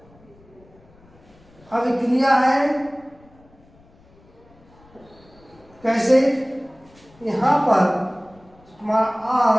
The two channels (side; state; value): left; noise; rumble, 28 dB below the sound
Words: अभिक्रिया है। कैसे, यहाँ पर हमारा